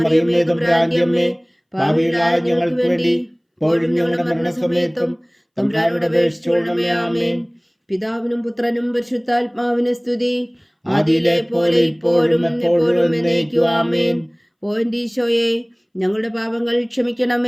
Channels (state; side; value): identical; both; correlation 1.00